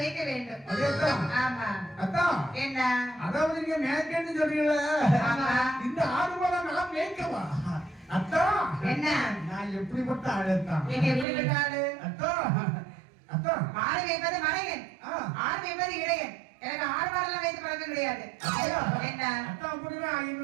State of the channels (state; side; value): drops out; left; at 11.2 s